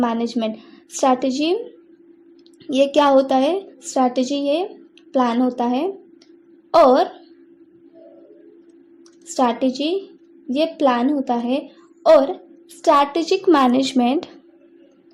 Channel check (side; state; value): both; identical; correlation 1.00